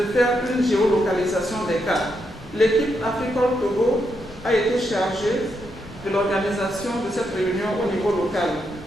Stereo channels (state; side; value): normal; both; correlation 0.81